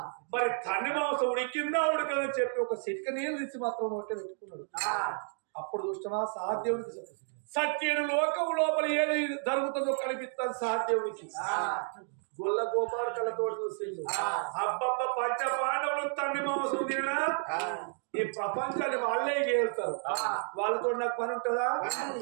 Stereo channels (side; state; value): left; silent; 57 dB below the other